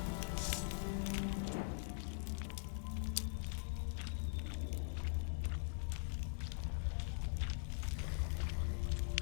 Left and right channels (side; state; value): right; silent; digital silence